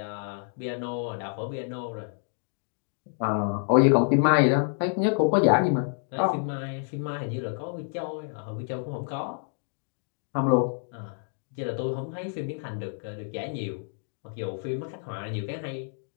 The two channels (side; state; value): right; silent; 59 dB below the other